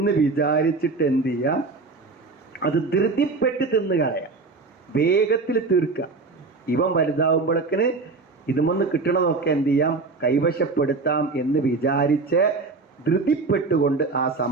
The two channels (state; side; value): quieter; left; 4.0 dB